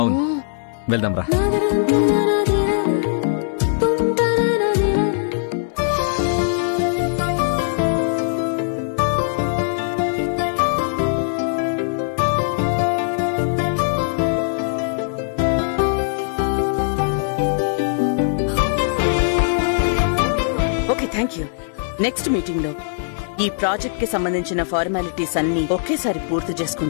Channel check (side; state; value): right; silent; 62 dB below the other